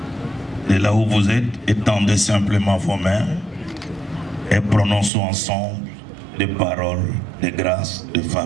Et là où vous êtes, étendez simplement vos mains et prononçons ensemble des paroles de grâce, de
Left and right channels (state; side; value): drops out; left; at 5.1 s